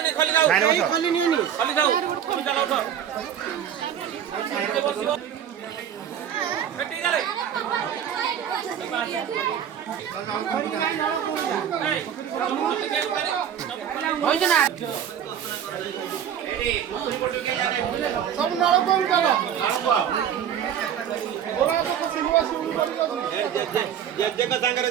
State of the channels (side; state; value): left; quieter; 9.2 dB